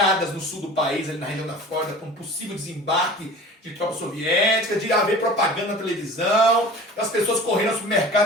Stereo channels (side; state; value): both; normal; correlation 0.40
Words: no sul do país, ali na região da Flórida, com um possível desembarque de tropas soviéticas, de haver propaganda na televisão, das pessoas correndo aos